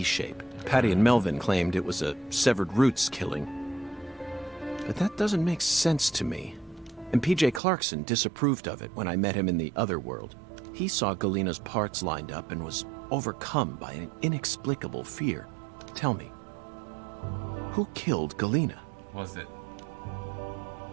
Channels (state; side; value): drops out; left; at 7.6 s